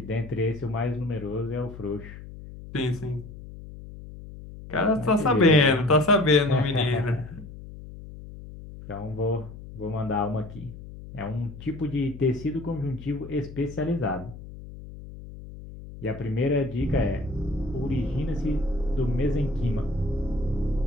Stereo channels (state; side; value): noise; left; hum, 14 dB below the sound